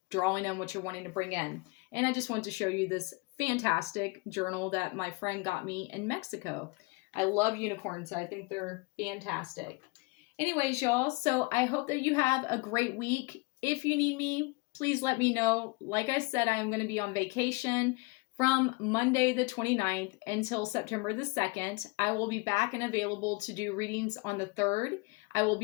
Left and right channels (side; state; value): right; quieter; 26.3 dB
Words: drawing on what you're wanting to bring in. And I just want to show you this fantastic journal that my friend got me in Mexico. I love unicorns. I think they're fantastic. Anyways, y'all, so I hope that you have a great week. If you need me, please let me know. Like I said, I am going to be on vacation from Monday the 29th until September the 2nd. I will be back and available to do readings on the 3rd. I will